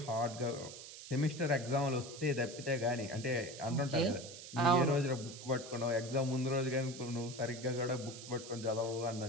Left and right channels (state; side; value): noise; right; hiss, 13 dB below the sound